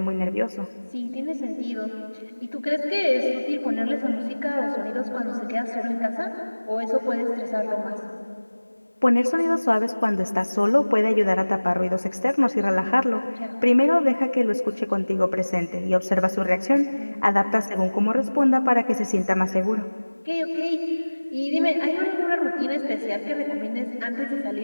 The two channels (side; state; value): both; inverted; correlation -1.00